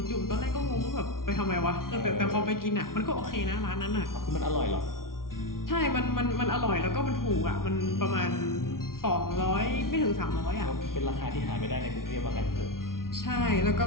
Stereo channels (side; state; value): right; late; 0.92 ms